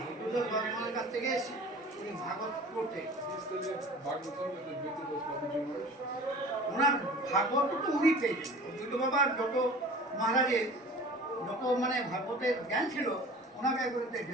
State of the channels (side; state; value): both; normal; correlation 0.42